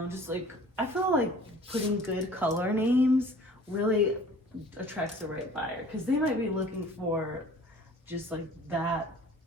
just like, I feel like putting good color names really attracts the right buyer, because they might be looking for just like that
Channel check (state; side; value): normal; both; correlation 0.48